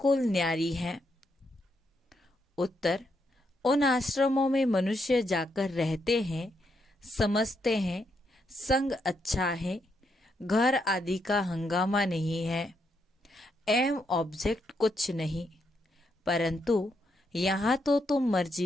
न्यारी है? उत्तर, उन आश्रमों में मनुष्य जाकर रहते हैं, समझते हैं संग अच्छा है, घर आदि का हंगामा नहीं है, एम ऑब्जेक्ट कुछ नहीं। परंतु यहाँ तो तुम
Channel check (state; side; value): normal; both; correlation 0.79